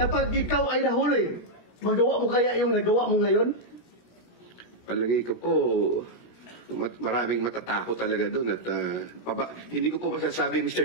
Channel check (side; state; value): right; late; 17 ms